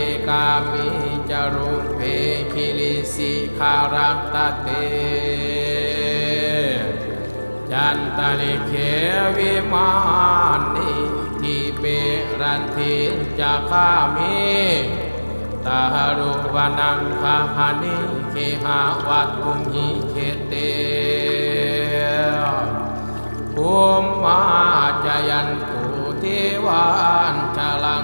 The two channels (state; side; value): inverted; both; correlation -1.00